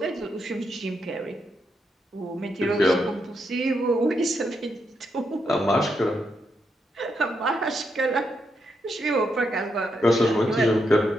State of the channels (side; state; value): both; normal; correlation 0.81